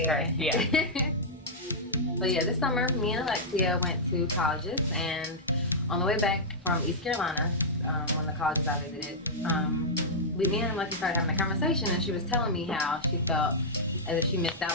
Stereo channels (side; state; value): both; normal; correlation -0.10